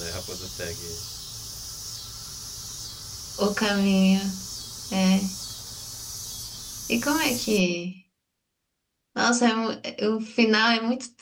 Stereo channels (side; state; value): both; identical; correlation 1.00